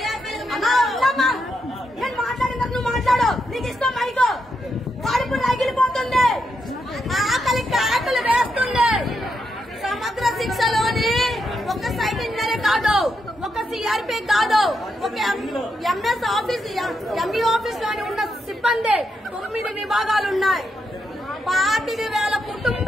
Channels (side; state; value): both; normal; correlation 0.82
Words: అన్నా ఉన్నామా? నేను మాట్లాడినా నువ్వు మాట్లాడు. నీకు ఇష్టం మైకో. కడుపు రగిలిపోతుంది, ఆకలి వేస్తుంది. సమగ్ర శిక్షలోని ఒక సైట్ ఇంజనీర్ కాదు, ఒక సిఆర్పీ కాదు, ఒక ఎంఎస్ ఆఫీస్, ఎంఈ ఆఫీస్ లోని ఉన్న సిబ్బంది 9 విభాగాలు ఉన్నాయి. 25,000